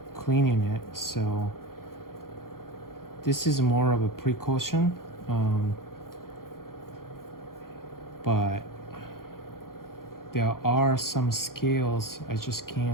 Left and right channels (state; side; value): late; right; 0.92 ms